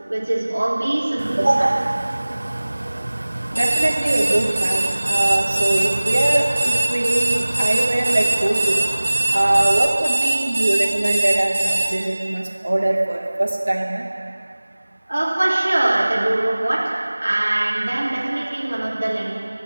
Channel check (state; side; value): inverted; both; correlation -1.00